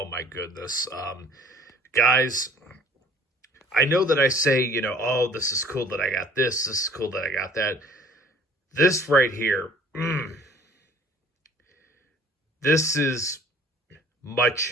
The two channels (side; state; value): both; normal; correlation 0.52